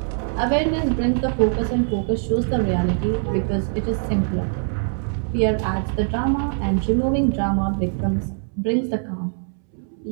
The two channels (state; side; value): silent; left; 64 dB below the other